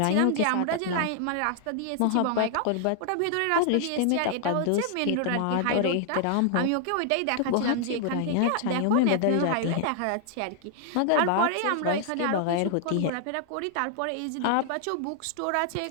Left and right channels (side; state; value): both; different; correlation 0.00